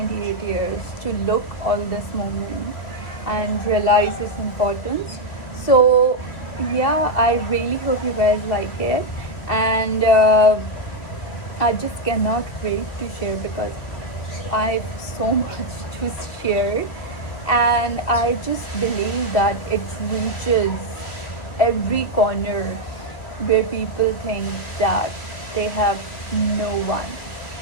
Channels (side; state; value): right; late; 2.4 ms